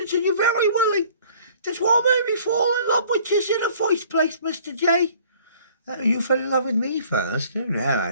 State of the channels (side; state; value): both; inverted; correlation -0.54